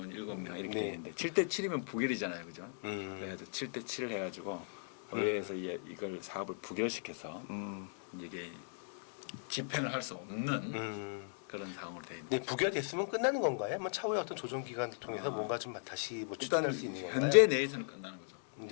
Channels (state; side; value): silent; right; digital silence